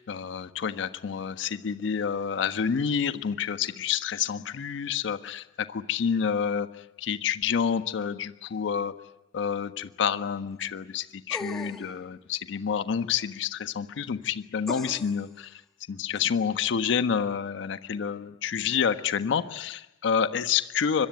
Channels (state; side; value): quieter; right; 6.9 dB